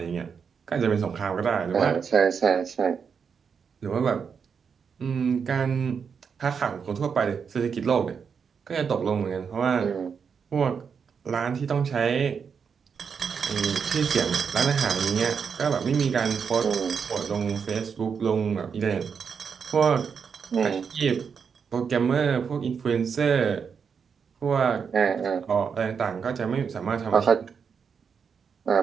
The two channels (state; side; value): quieter; left; 6.4 dB